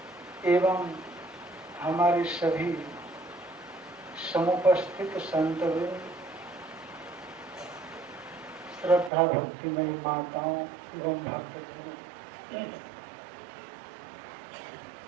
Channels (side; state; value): left; drops out; at 9.1 s